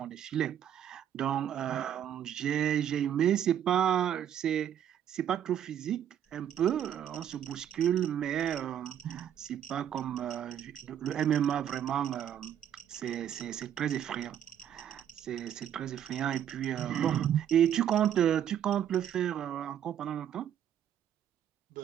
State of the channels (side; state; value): left; quieter; 9.9 dB